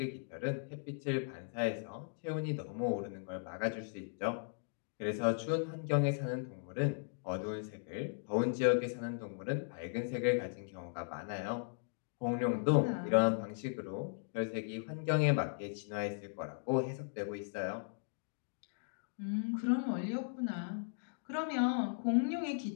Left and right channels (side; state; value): right; silent; digital silence